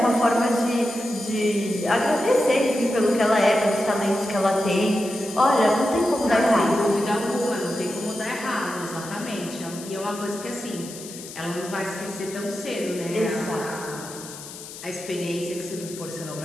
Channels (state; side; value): noise; left; hiss, 13 dB below the sound